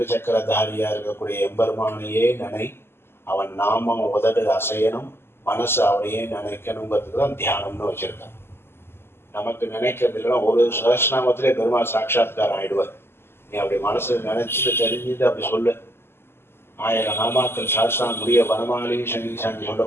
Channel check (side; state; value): right; late; 0.12 ms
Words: சக்கரதாரியா இருக்கக்கூடிய எம்பெருமானையே நினை, அவன் நாமம் உதடு அசையணும், மனசு அவனையே நினைக்கணுங்கிறதுக்கு தான் தியானம்னு வச்சிருக்கான். நமக்கு நினைக்கிறது இல்லைன்னா ஒரு சஹஸ்ரநாமத்திலே பெருமாள் சாட்சாத்காரம் ஆயிடுவார். நீ அப்படி மனசு நினைச்சிட்டு தெரிஞ்சுட்டு அப்படி சொல்லு. 1000 நாமாக்கள் சாஸ்திரம் முடிய வனமாலி சங்கீசாங்கி